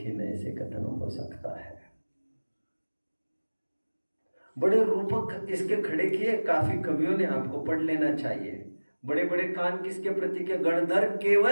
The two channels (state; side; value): inverted; both; correlation -1.00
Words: नए से कथन हो सकता है। बड़े रूपक इसके खड़े किए काफी कवियों ने, आपको पढ़ लेना चाहिए। बड़े बड़े कान किसके प्रतीक है? गणधर